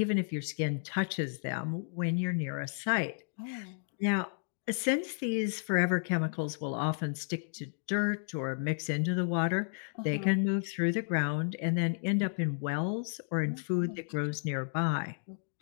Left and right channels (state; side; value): silent; right; digital silence